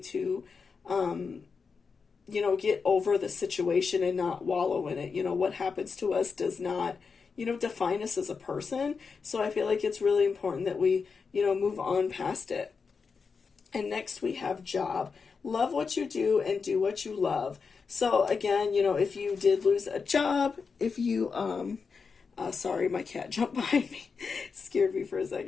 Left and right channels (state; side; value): quieter; right; 5.2 dB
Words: get over the situation and not wallow in it. What happens to us does not, define us as a person. So I feel like it's really important that we, move on past it. And next we have job. Love what you do and do what you love. So again, if you did lose a job, if you, sorry, my cat jumped behind me, scared me for a